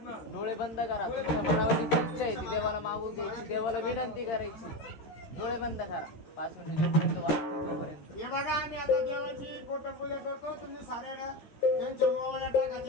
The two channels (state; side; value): late; right; 13 ms